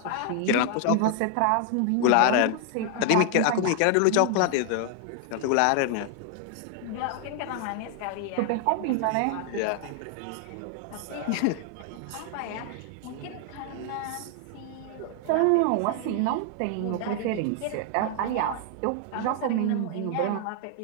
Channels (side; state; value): both; different; correlation 0.00